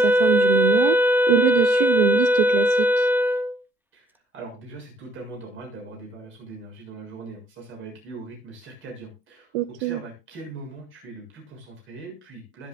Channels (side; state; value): both; normal; correlation 0.64